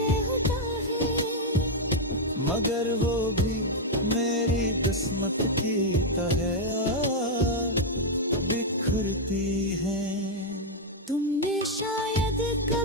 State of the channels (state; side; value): normal; both; correlation -0.01